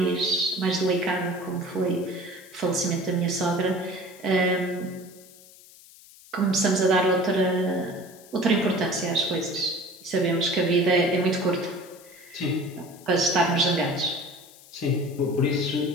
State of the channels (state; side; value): noise; left; hiss, 22 dB below the sound